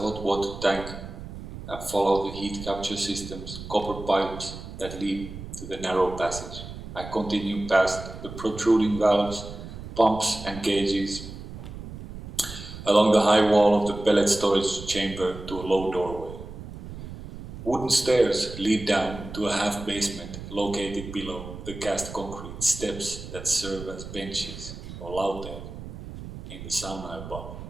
water tank, and follow the heat capture system's copper pipes that lead to the narrow passage. I continue past the protruding valves, pumps and gauges, along the high wall of the pellet storage chamber to a low doorway. Wooden stairs lead down to a half basement located below the cast concrete steps that serve as benches or laute in the sauna above.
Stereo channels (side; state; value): right; noise; rumble, 11 dB below the sound